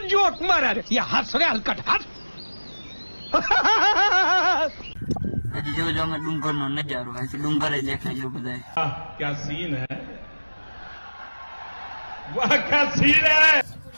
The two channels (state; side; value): inverted; both; correlation -1.00